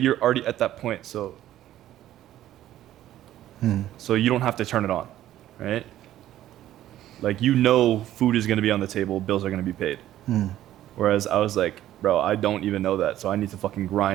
already at that point, so you don't have to turn it on, right? Like, you know, food is going to be on the table, bills are going to be paid. Whereas I was like, bro, I don't even know that, so I need to fucking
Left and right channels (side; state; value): left; quieter; 13.0 dB